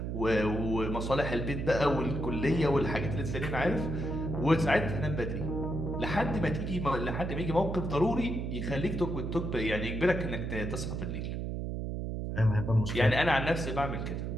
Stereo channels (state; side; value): noise; right; hum, 3 dB below the sound